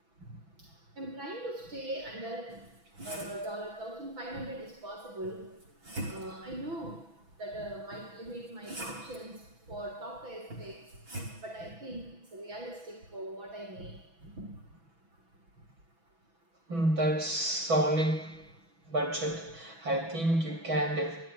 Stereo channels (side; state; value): left; late; 6.1 ms